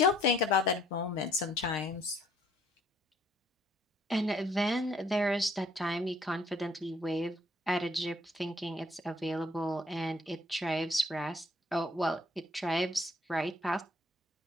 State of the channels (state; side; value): normal; both; correlation 0.62